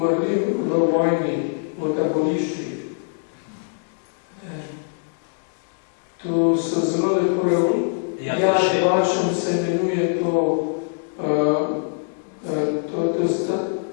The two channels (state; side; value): silent; right; digital silence